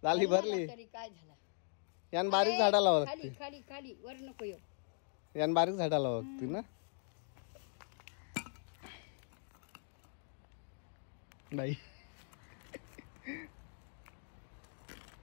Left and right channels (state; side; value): silent; right; digital silence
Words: झाली भरली. तरी काय झालं. यान बारीक झाडा लावा खाली लागते. खाली खाली वर नको येऊ. यान बारीक झाडा लावा लागते ना. नाही